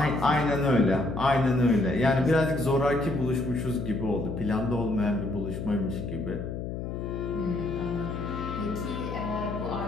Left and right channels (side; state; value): left; noise; hum, 5 dB below the sound